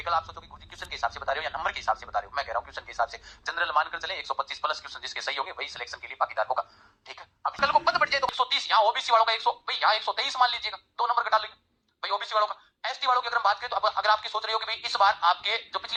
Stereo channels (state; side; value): identical; both; correlation 1.00